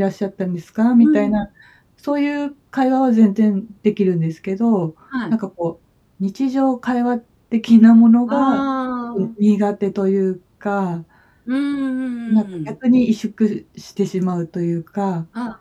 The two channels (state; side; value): identical; both; correlation 1.00